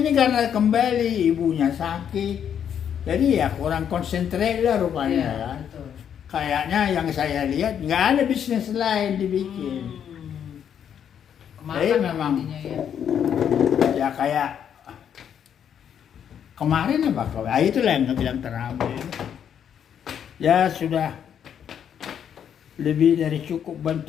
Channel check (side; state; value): right; quieter; 8.7 dB